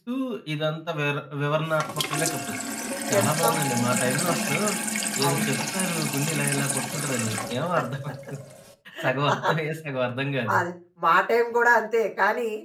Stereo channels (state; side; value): identical; both; correlation 1.00